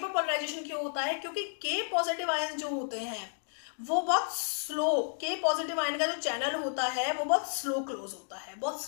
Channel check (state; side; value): silent; right; digital silence